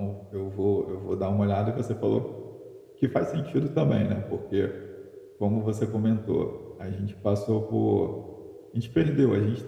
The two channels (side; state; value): both; identical; correlation 1.00